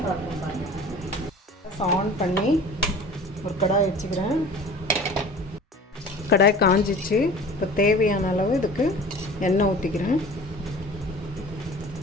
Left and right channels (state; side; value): normal; both; correlation 0.42